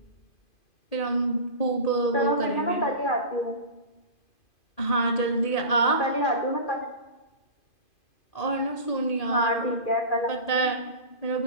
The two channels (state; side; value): late; right; 2.5 ms